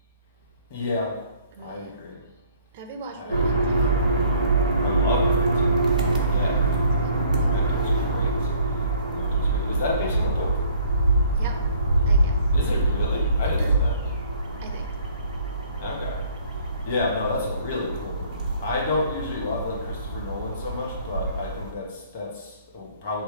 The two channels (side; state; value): both; inverted; correlation -0.58